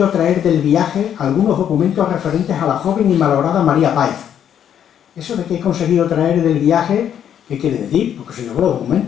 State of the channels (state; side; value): quieter; right; 9.4 dB